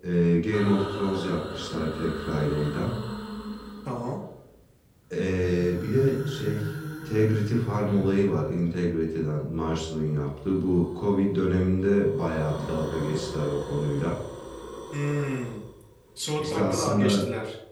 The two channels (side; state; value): both; identical; correlation 1.00